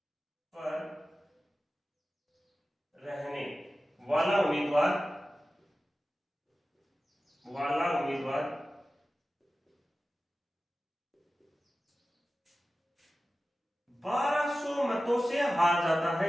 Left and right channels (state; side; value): normal; both; correlation 0.95